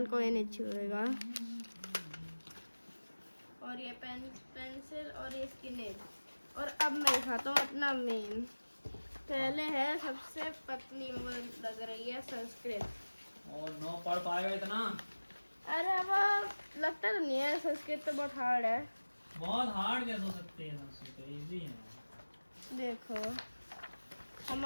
कोई नहीं छुएगा। और ये पेंसिल और ये इसकी नेल। और अब मैं दिखाता हूँ अपना मेन। पहले है सबसे पतली, मुझे लग रही है संस्कृत। और नो पढ़ पाएगा इतना? अरे अब लगता तो नहीं है, संस्कृत तो बहुत हार्ड है। बहुत हार्ड कैसे हो सकती है? संस्कृत इजी है। देखो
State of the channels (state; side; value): inverted; both; correlation -1.00